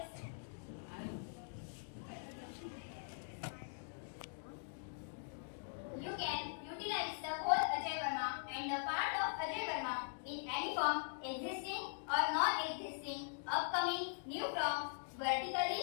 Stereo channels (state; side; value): silent; right; digital silence